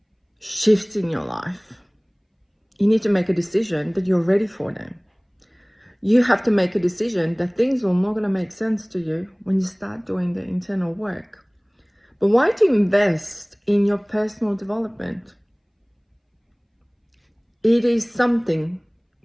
shifts in your life, you need to make a decision that you're ready for them. You have to make a decision that things are not going to make sense to you when you start doing the internal work. But why do you invest in your personal development? It is something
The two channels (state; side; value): identical; both; correlation 1.00